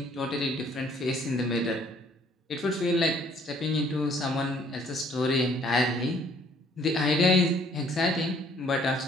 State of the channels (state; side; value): normal; both; correlation 0.61